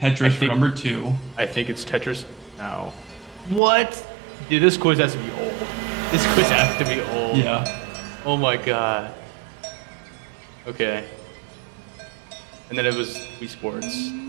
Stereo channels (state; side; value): drops out; left; at 3.6 s